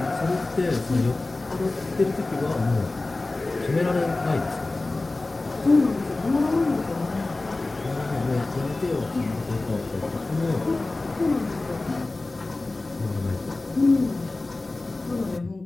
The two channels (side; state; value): right; quieter; 3.2 dB